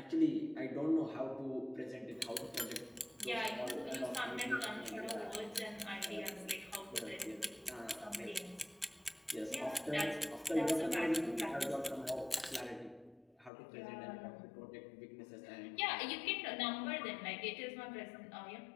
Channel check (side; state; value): right; drops out; at 13.5 s